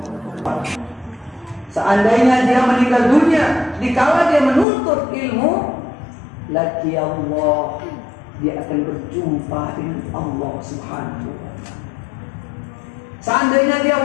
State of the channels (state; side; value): drops out; right; at 4.7 s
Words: Seandainya dia meninggal dunia dikala dia menuntut ilmu, laki Allah, dia akan berjumpa dengan Allah Subhanahu wa ta'ala. Seandainya dia